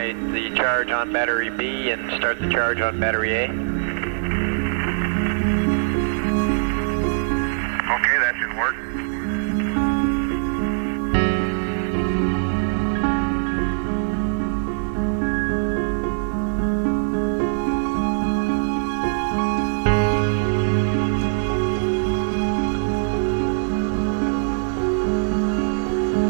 the charge on battery B and start the charge on battery A. Okay, that should work.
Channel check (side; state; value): left; silent; digital silence